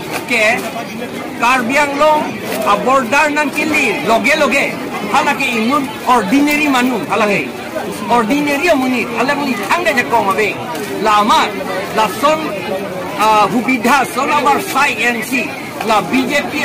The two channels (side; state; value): both; identical; correlation 1.00